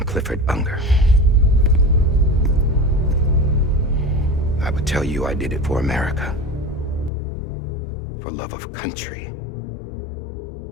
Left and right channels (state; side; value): drops out; right; at 7.1 s